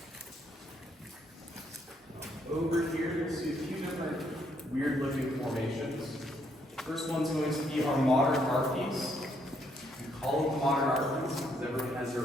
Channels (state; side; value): normal; both; correlation 0.72